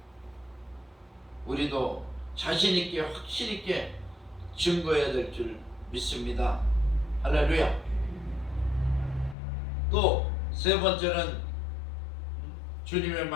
우리도 자신 있게 확실 있게 증거해야 될 줄 믿습니다. 할렐루야. 또 세 번째는 주님의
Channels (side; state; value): right; drops out; at 9.3 s